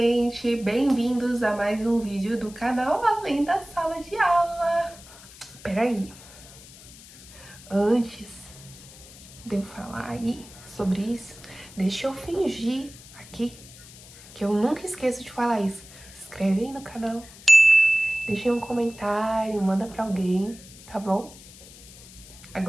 Bem-vindos a mais um vídeo do canal Além da Sala de Aula. Peraí, antes de eu falar aí sobre isso, deixa eu fingir aqui que eu nunca esqueço de falar isso. Se inscreve aí no canal, deixa aí um comentário, manda pra alguém, tá bom?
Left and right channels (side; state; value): left; noise; hiss, 19 dB below the sound